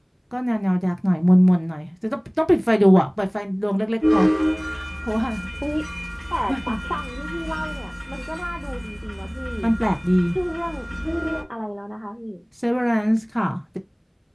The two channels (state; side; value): identical; both; correlation 1.00